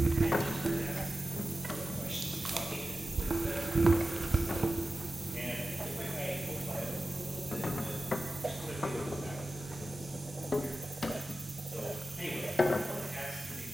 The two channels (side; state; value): both; normal; correlation 0.94